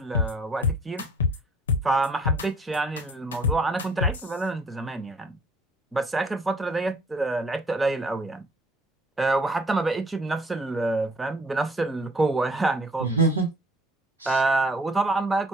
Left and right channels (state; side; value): normal; both; correlation 0.56